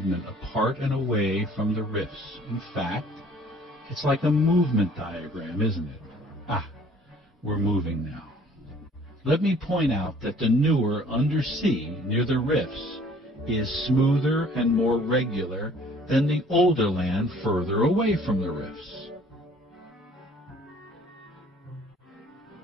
apart and away from the rifts. In fact, it's like a movement diagram, isn't it? We're moving now. Let me point out that the newer undersea near the rifts is smoother and more regular than the older land further away from the rifts.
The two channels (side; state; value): both; normal; correlation 0.55